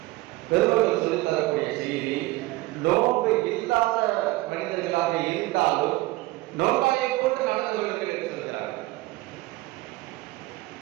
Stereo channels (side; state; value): left; quieter; 19.2 dB